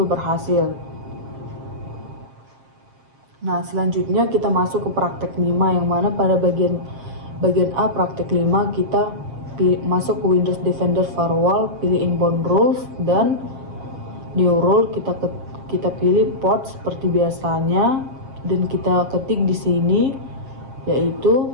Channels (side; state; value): left; late; 7.9 ms